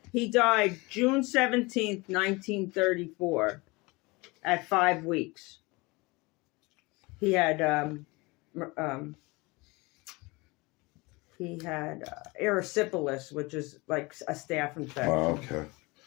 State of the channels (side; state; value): right; quieter; 24.8 dB